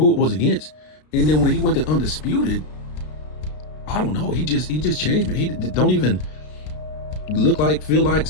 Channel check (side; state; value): right; late; 33 ms